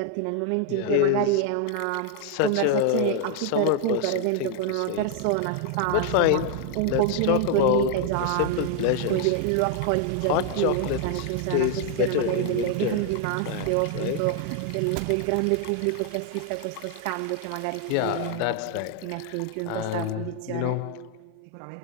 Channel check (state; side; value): different; both; correlation 0.00